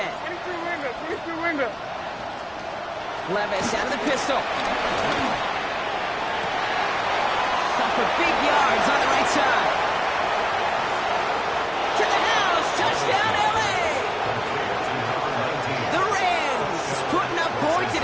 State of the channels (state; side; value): identical; both; correlation 1.00